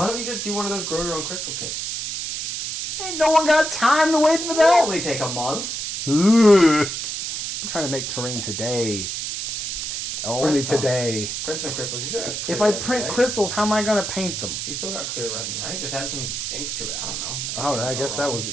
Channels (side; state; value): right; noise; hiss, 4 dB below the sound